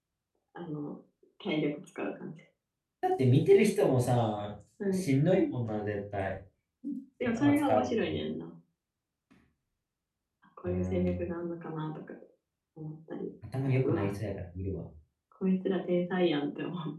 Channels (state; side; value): identical; both; correlation 1.00